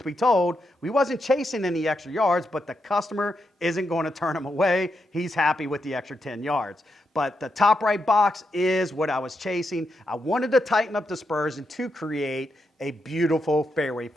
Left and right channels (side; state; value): both; normal; correlation 0.83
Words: be told, we wasn't chasing any extra yards, but the customer isn't going to turn him away. He's happy with the extra 10 yards. But the top right box is what I was chasing. I wanted to tighten up dispersion to create a beautiful fairway